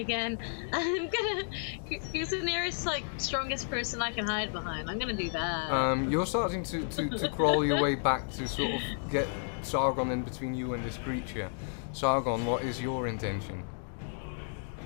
I'm gonna... Who's the nearest, like, strongest person I can hide behind? I'm gonna do that. You're starting to crawl your way back to sort of get Sargon in between you and this creature. Sargon, what is your intention?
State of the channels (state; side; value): silent; right; digital silence